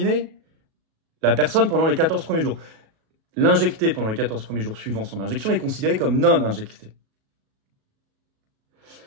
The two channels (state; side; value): late; left; 37 ms